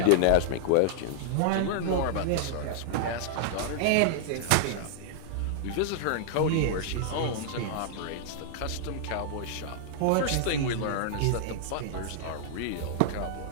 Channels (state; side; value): different; both; correlation -0.01